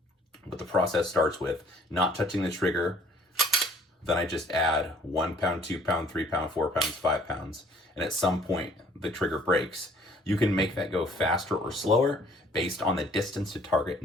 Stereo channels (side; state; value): both; normal; correlation 0.58